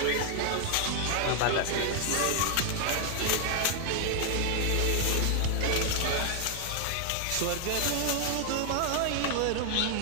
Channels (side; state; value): both; different; correlation 0.00